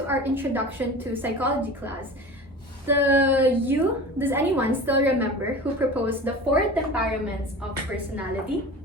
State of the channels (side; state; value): both; normal; correlation 0.35